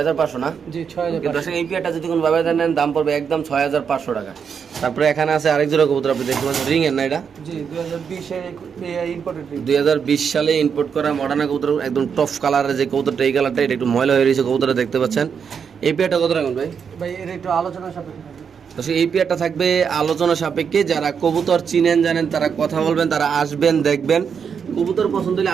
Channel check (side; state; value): left; quieter; 6.8 dB